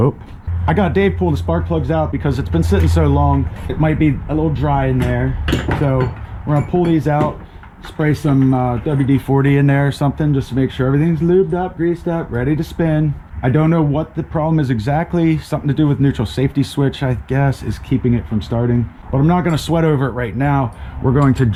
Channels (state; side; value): identical; both; correlation 1.00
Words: I got Dave pull the spark plugs out because it's been sitting so long. It might be a little dry in there. So we're gonna pull these out, spray some WD-40 in there or something just to make sure everything's lubed up, greased up, ready to spin. I don't know what the problem is exactly. Something to do with neutral safety switch, I guess, is keeping it from starting. But I'm not gonna sweat over it right now. We're going to